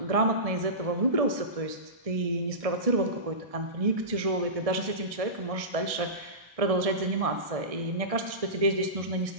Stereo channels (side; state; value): left; late; 1.6 ms